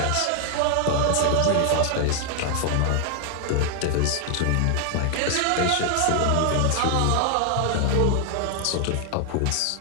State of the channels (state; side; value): different; both; correlation 0.00